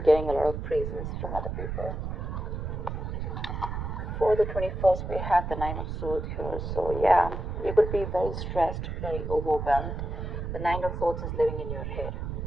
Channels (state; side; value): noise; right; rumble, 4 dB below the sound